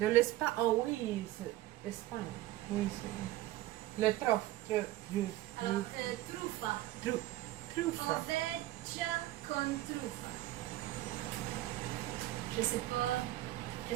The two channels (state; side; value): quieter; left; 16.0 dB